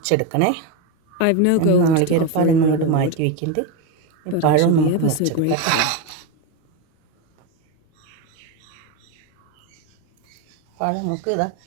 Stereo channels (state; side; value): different; both; correlation 0.04